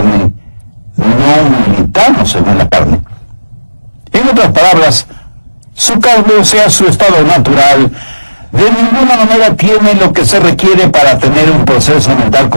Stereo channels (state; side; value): inverted; both; correlation -1.00